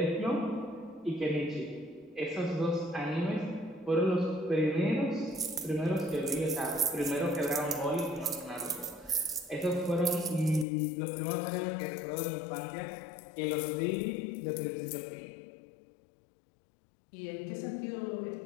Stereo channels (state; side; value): drops out; right; at 10.7 s